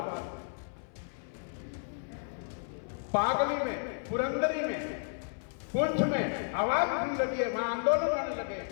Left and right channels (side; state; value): right; silent; 56 dB below the other